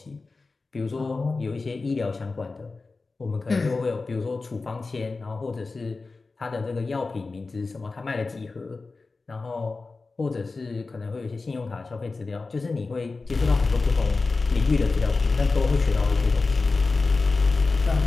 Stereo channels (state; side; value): quieter; right; 3.9 dB